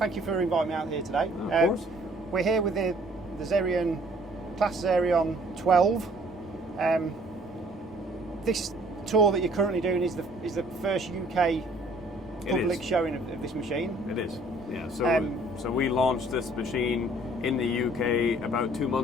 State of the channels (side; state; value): both; normal; correlation 0.58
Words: you for inviting me out here today. Of course. We're here with the Xerion, Claas Xerion 12. This tour that you're currently doing is the first UK public showing of this machine. It is, yeah. So we launched this machine in the UK about 2